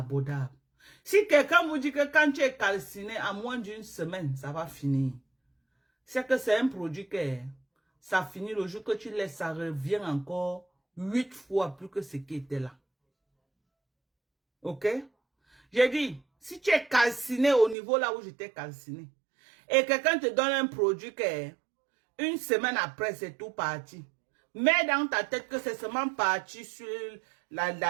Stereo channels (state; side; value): drops out; left; at 17.8 s